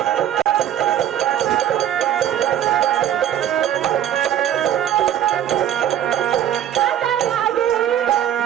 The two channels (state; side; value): quieter; left; 10.7 dB